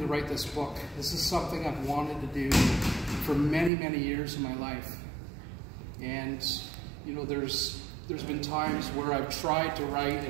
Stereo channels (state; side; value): drops out; left; at 3.7 s